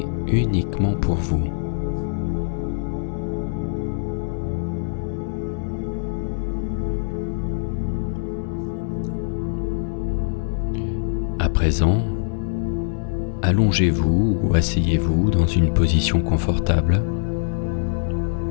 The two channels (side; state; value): right; silent; 61 dB below the other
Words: uniquement pour vous. À présent, allongez-vous ou asseyez-vous dans une position confortable,